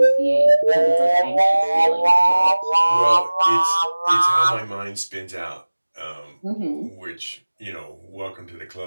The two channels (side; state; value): both; inverted; correlation -1.00